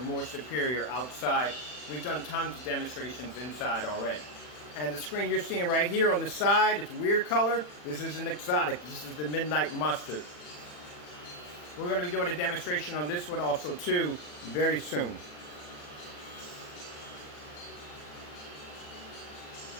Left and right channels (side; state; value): right; late; 40 ms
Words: more superior outside. We've done tons of demonstrations inside already. And the screen you're seeing right here on the side, it's a weird color. This is an exotic. This is the Midnight Mustard. We're going to be doing a demonstration on this one also too very soon.